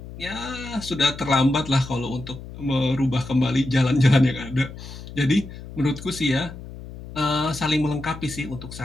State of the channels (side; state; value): left; noise; hum, 13 dB below the sound